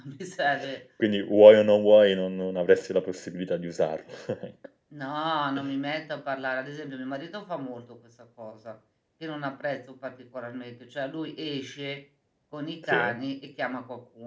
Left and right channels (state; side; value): identical; both; correlation 1.00